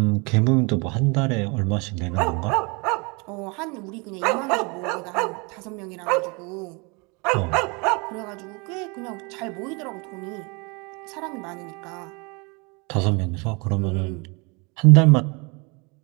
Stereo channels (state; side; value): quieter; left; 29.9 dB